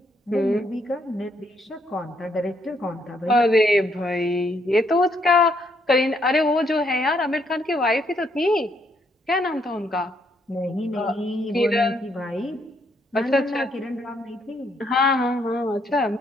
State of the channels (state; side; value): normal; both; correlation 0.72